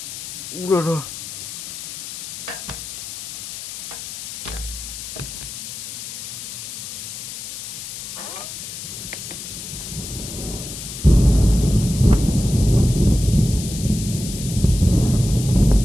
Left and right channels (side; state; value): left; noise; hiss, 9 dB below the sound